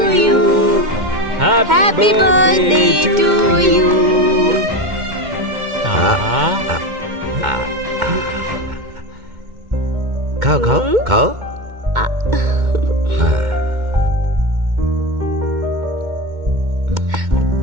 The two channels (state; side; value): late; left; 2.1 ms